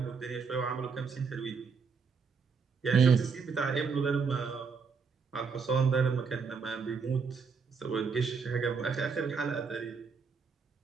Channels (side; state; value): left; quieter; 5.4 dB